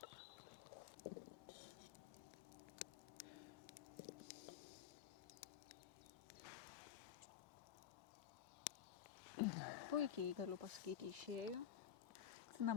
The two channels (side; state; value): right; quieter; 9.2 dB